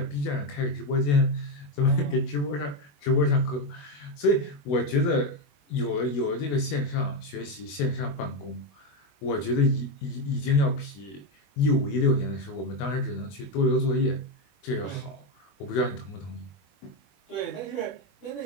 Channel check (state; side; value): late; right; 21 ms